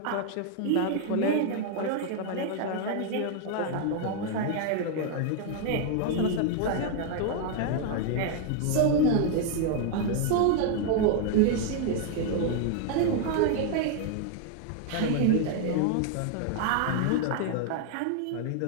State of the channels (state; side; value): different; both; correlation 0.00